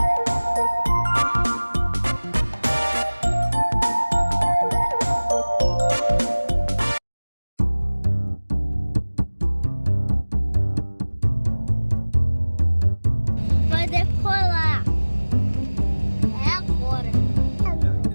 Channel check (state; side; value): inverted; both; correlation -1.00